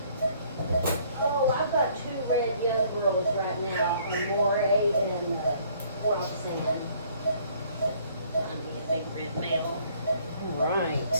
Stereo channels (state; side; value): inverted; both; correlation -0.61